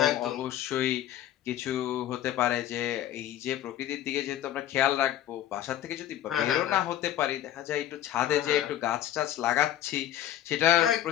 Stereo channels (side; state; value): right; quieter; 12.2 dB